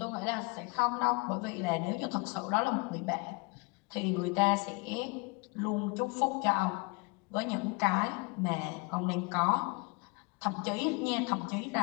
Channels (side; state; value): right; quieter; 28.7 dB